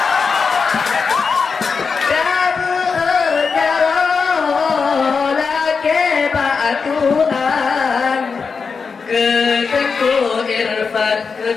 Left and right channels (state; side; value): quieter; right; 5.2 dB